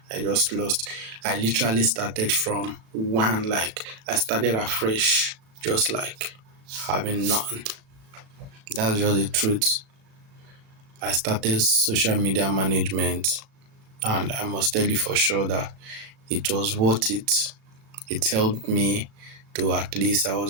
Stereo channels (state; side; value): late; left; 37 ms